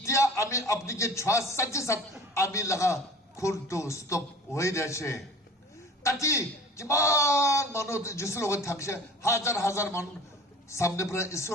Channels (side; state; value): both; normal; correlation 0.42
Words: আমি আপনাকে 6-7 আমি লাগা খুনটো স্টপ হয়ে যাচ্ছে তাতে কিমান মানুহ যিচুৰ লগত থাকিছে হাজাৰ হাজাৰ মানুহ সামনে পৰা